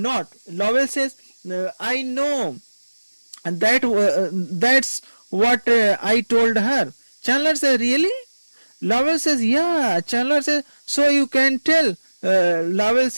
Lowell says, I know, and that's what I told her. Chandler says, really? Lowell says, yeah. Chandler says, so you can tell. Lowell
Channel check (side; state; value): both; inverted; correlation -1.00